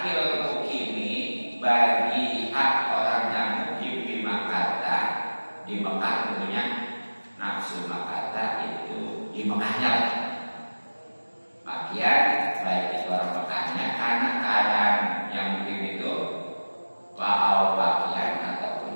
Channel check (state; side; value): inverted; both; correlation -1.00